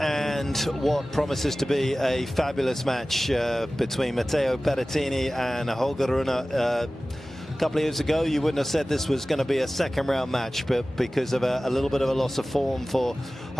what promises to be a fabulous match between Matteo Berrettini and Holger Rune. A couple of years ago, you wouldn't have said this was going to be a second-round match, but because of a little bit of a loss of form for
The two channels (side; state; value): both; normal; correlation 0.97